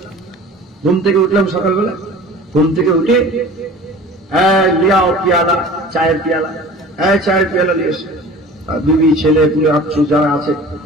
ঘুম থেকে উঠলাম, সকালবেলা ঘুম থেকে উঠে লিয়াও পিয়ালা, চায়ের পিয়ালা, চায়ের পিয়ালা নিয়ে এসে বিবি, ছেলে পুলে আত্মীয় যারা আছে,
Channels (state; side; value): normal; both; correlation 0.42